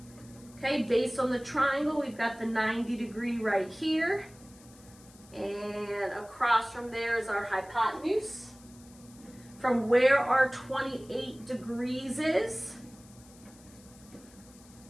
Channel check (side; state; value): left; noise; hiss, 24 dB below the sound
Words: Okay, based on the triangle, we've got the 90 degree right here. And across from there is our hypotenuse. From where our 28 degrees is,